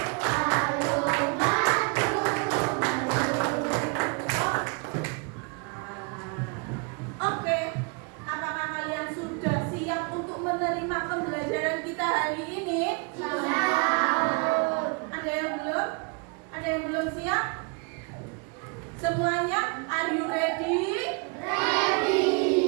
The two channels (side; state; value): left; quieter; 34.9 dB